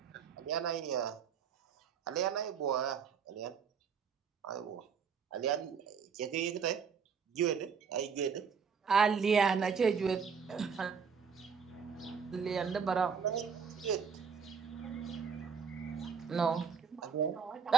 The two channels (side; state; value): left; quieter; 6.4 dB